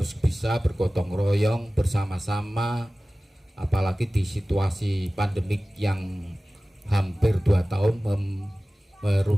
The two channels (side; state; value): both; normal; correlation 0.97